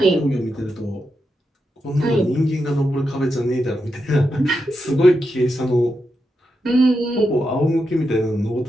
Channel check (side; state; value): both; normal; correlation 0.86